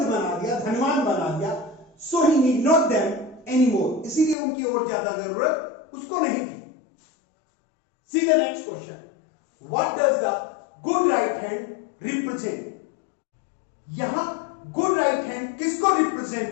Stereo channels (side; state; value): right; drops out; at 4.4 s